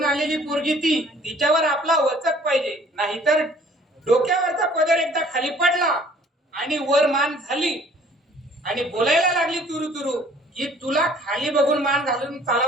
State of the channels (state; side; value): normal; both; correlation 0.55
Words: आलेली पोरगी तिच्यावर आपला वचक पाहिजे. नाहीतर डोक्यावरचा पदर एकदा खाली पडला आणि वर मान झाली आणि बोलायला लागली तुरु तुरु की तुला खाली बघून मान घालून